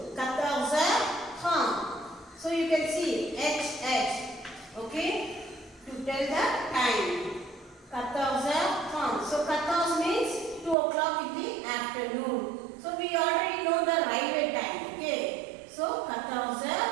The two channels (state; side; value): drops out; left; at 10.8 s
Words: 14h30. So you can see H. Okay, to tell the time. 14h30. So 14 means 2 o'clock in the afternoon. So we already know the railway time. Okay. So